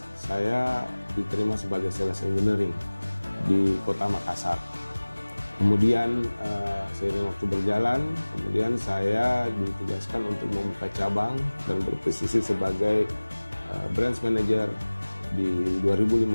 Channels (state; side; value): inverted; both; correlation -1.00